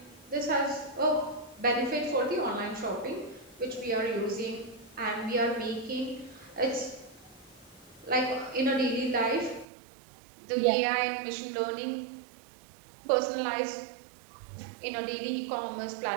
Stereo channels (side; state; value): left; drops out; at 9.7 s